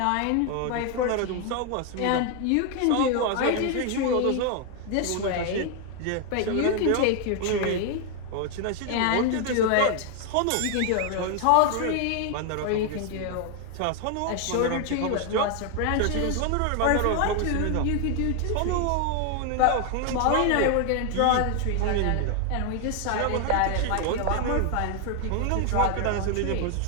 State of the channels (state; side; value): different; both; correlation 0.01